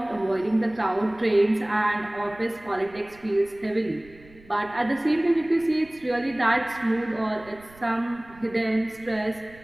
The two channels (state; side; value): noise; right; rumble, 24 dB below the sound